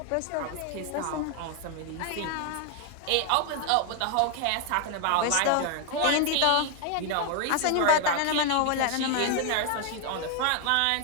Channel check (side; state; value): both; different; correlation 0.00